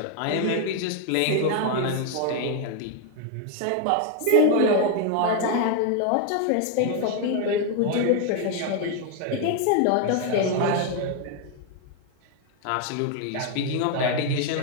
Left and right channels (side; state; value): both; different; correlation 0.01